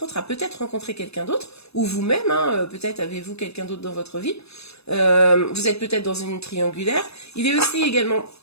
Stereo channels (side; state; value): right; late; 0.79 ms